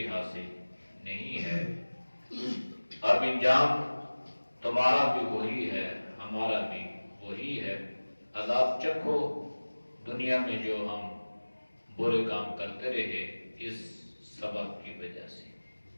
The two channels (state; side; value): inverted; both; correlation -1.00